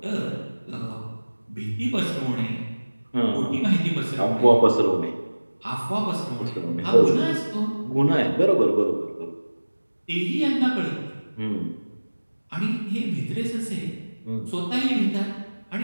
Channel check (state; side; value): inverted; both; correlation -1.00